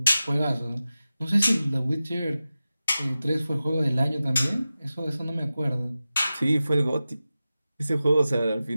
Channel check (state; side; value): inverted; both; correlation -0.94